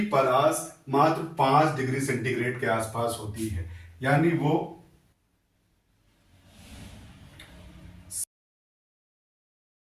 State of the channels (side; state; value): both; identical; correlation 1.00